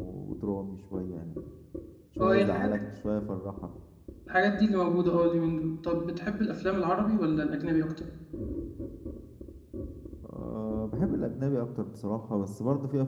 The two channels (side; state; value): both; identical; correlation 1.00